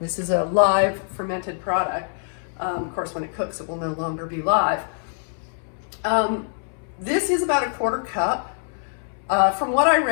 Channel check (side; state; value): right; silent; 63 dB below the other